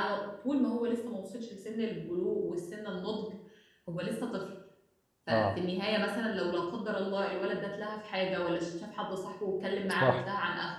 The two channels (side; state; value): both; identical; correlation 1.00